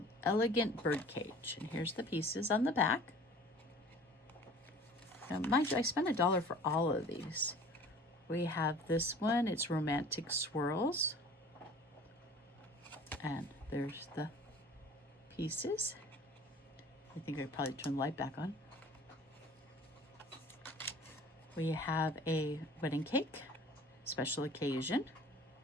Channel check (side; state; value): both; normal; correlation 0.46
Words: Elegant Bird Cage. And here's the pieces on the back. Now, mind you, I spent $1 for all of these. We have this one. It's Romantic Swirls. And there's the pieces. I think I probably turn the light back on. We have a wedding cake, special occasion.